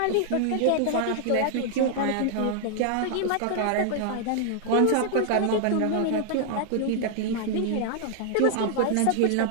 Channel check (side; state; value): both; different; correlation -0.01